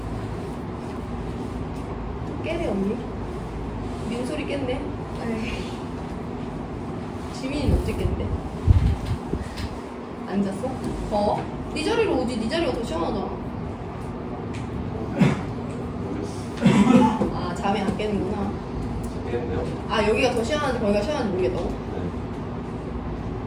깨네 언니? 민소리 깼네? 지민이는 언제 깼는데? 안 잤어? 네 자리로 오지. 네 자리가 더 시원하잖아. 아 잠이 안 깨는구나. 깼네요. 아 여기가 더 시원한지 거기가 시원한지 모르겠다고?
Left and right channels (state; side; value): identical; both; correlation 1.00